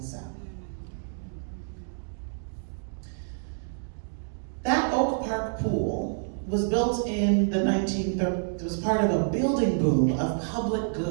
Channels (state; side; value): silent; left; digital silence